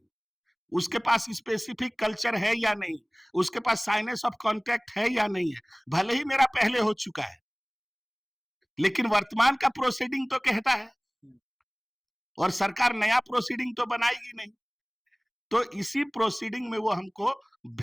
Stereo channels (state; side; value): identical; both; correlation 1.00